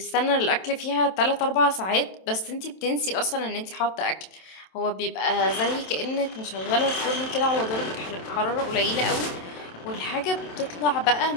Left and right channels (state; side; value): late; right; 27 ms